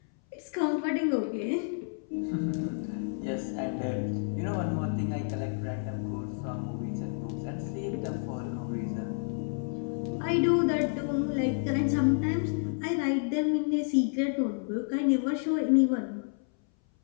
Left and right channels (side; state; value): right; silent; 58 dB below the other